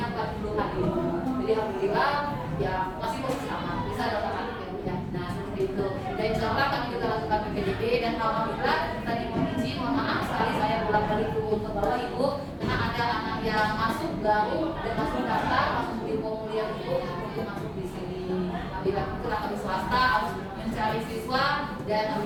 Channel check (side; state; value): both; identical; correlation 1.00